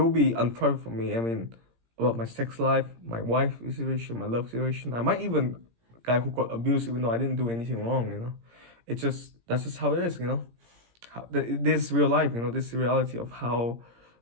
be unprivate for me. I mean, about my sex life, my wife situation, my love situation. I might even guy who got abused even though I didn't do anything wrong, you know. It's just that's just how it is, you know. This real life, you know, this reality of how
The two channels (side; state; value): left; late; 17 ms